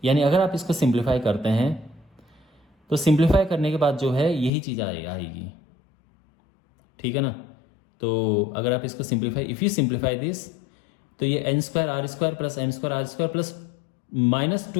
यानी अगर आप इसको सिंप्लीफाई करते हैं तो सिंप्लीफाई करने के बाद जो है यही चीज़ आएगी, ठीक है ना। तो अगर आप इसको simplify, if you simplify this, तो ये n square R square plus m square R square plus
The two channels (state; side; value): drops out; right; at 4.5 s